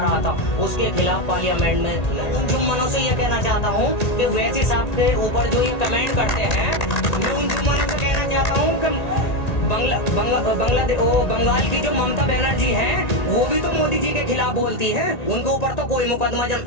था, उसके खिलाफ पार्लियामेंट में। उन जुम्मनों से ये कहना चाहता हूँ कि वैसी साहब के ऊपर जो ये कमेंट करते हैं, मैं उन जुम्मनों से कहना चाहता हूँ कि बंगाल की जो ममता बनर्जी हैं, वो भी तो मोदी जी के खिलाफ बोलती हैं। उनके ऊपर तो कोई मुकदमा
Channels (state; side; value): late; right; 1.9 ms